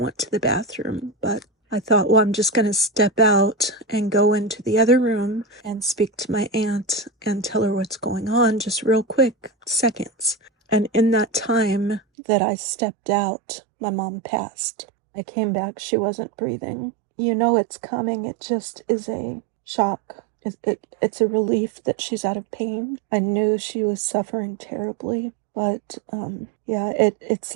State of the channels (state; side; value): drops out; left; at 12.0 s